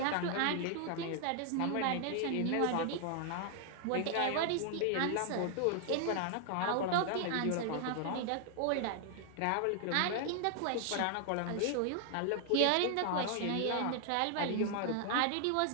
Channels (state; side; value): different; both; correlation 0.00